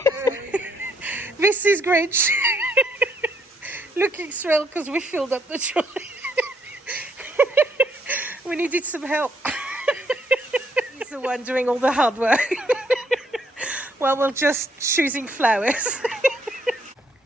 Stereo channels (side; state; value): both; normal; correlation 0.70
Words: This is Grinch looking thrilled because we filled up the trolley. We needed some help. He's the one doing all the hard work. Well, we're just choosing flowers.